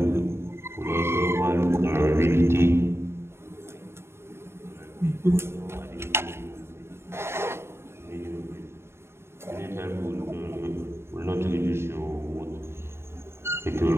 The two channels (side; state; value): left; late; 0.12 ms